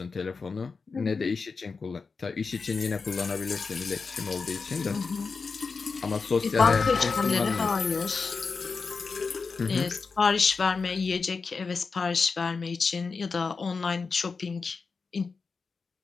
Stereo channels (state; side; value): quieter; right; 4.7 dB